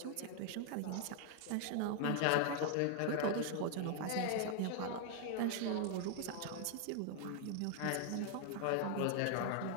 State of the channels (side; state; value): both; different; correlation 0.00